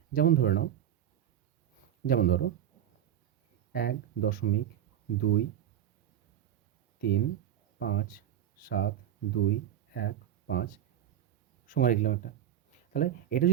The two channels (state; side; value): quieter; left; 10.8 dB